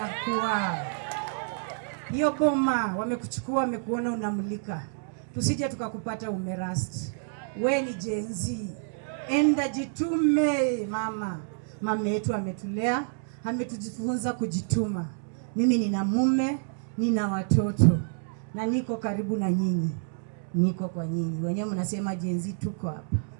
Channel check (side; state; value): left; silent; digital silence